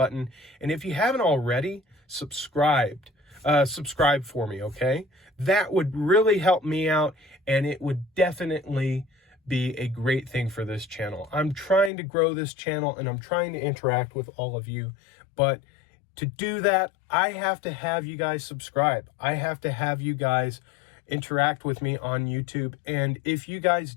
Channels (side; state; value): right; drops out; at 11.9 s